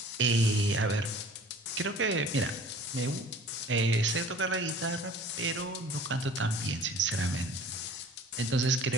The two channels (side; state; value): both; normal; correlation 0.47